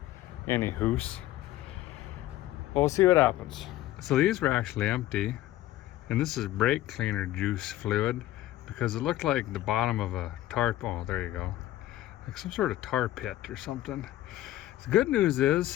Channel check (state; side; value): quieter; right; 14.6 dB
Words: Any hoose. We'll see what happens. So these were actually empty, and this is brake cleaner juice fluid, because it looked like the bottom of a tarp. Oh, there you go, like some sort of tar pit or something. The good news is